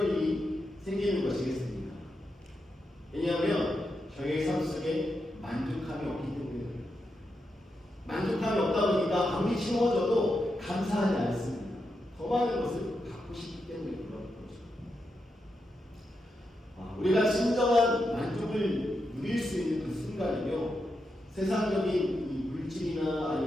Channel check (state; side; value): normal; both; correlation 0.86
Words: 일이 생기는 것이겠습니까? 왜냐하면 저희의 삶 속에 만족함이 없기 때문에, 만족함이 없다 보니까 아무리 채워져도 감사하지 않습니다. 더 많은 것을 갖고 싶기 때문에 그런 거죠. 우리가 진정한 만족을 누릴 수 있는 그 순간이며, 세상적인 이 물질이나